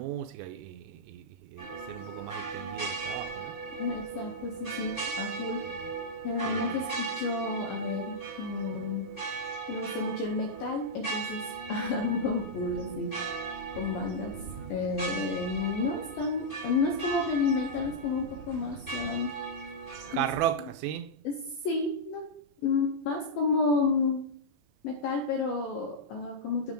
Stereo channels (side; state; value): both; normal; correlation -0.07